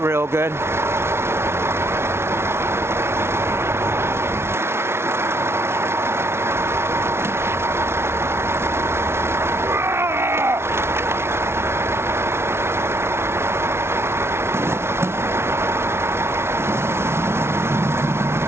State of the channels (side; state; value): left; late; 0.12 ms